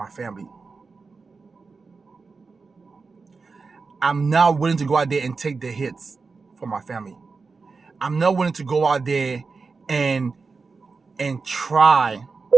family. I'm not willing to go out there and take the hits for my family. I'm not willing to go out there and try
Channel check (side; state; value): left; quieter; 4.5 dB